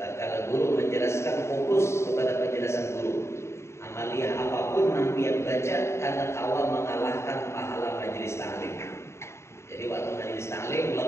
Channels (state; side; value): late; right; 0.13 ms